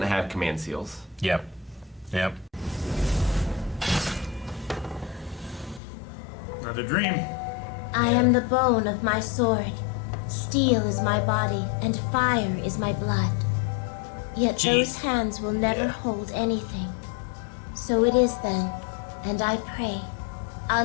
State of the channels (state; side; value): drops out; right; at 5.8 s